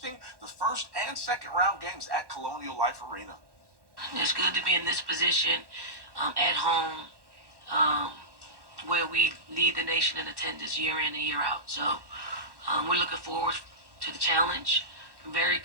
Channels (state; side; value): late; left; 1.1 ms